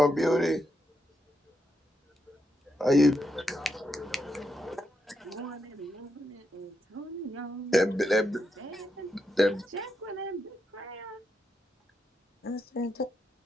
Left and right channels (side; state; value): both; normal; correlation 0.83